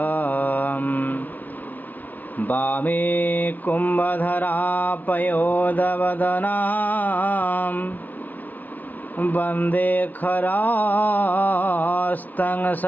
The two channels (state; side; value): late; right; 0.084 ms